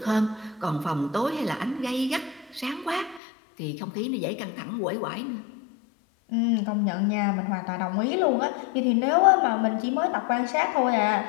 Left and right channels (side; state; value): right; drops out; at 3.2 s